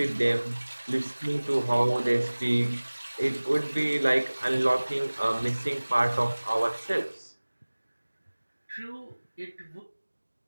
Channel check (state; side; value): inverted; both; correlation -1.00